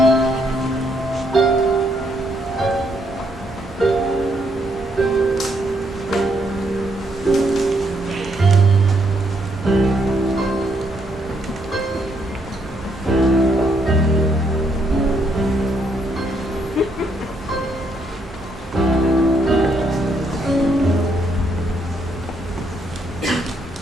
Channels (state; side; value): normal; both; correlation 0.73